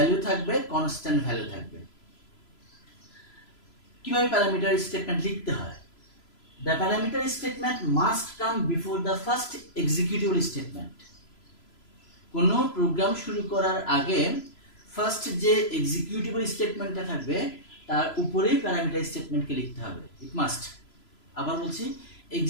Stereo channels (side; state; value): right; late; 3.0 ms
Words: থাকবে, কনস্ট্যান্ট ভ্যালু থাকবে। কিভাবে প্যারামিটার স্টেটমেন্ট লিখতে হয়? The parameter statement must come before the first executable statement. কোনো প্রোগ্রাম শুরু করার আগে ফার্স্ট যে এক্সিকিউটেবল স্টেটমেন্টটা থাকবে তার উপরেই প্যারামিটার স্টেটমেন্টকে লিখতে হবে, ইট মাস্ট। আবার বলছি,